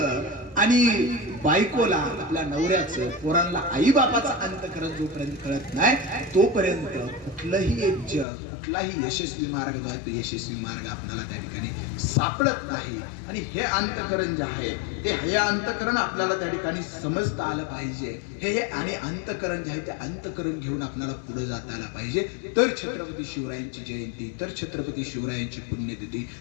आणि बायकोला, आपल्या नवऱ्याचं, पोरांना आई बापाचा अंतःकरण जोपर्यंत कळत नाही तोपर्यंत कुठलंही एक जग, कुठलाही यशस्वी मार्ग जो आहे तो यशस्वी मार्ग आपल्याला त्या ठिकाणी सापडत नाही. आणि हे अंतःकरण जे आहे ते हे अंतःकरण आपल्याला त्या ठिकाणी समजता आलं पाहिजे. हे आणि अंतःकरण जे आहे ते अंतःकरण घेऊन आपल्याला पुढे जाता आलं पाहिजे. तर छत्रपती शिवरायांची जयंती, तर छत्रपती शिवरायांची पुण्यतिथी,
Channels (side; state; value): right; drops out; at 8.2 s